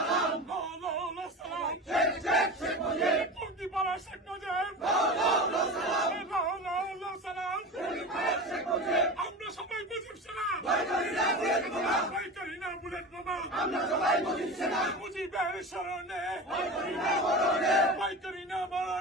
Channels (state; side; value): normal; both; correlation 0.28